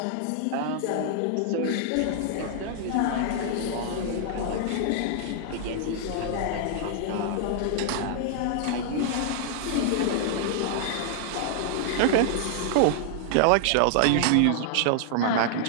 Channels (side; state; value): both; different; correlation -0.01